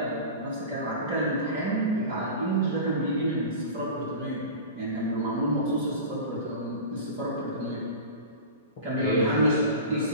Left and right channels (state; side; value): inverted; both; correlation -0.32